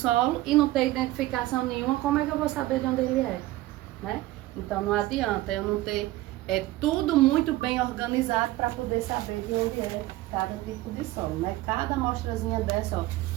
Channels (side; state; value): left; quieter; 17.2 dB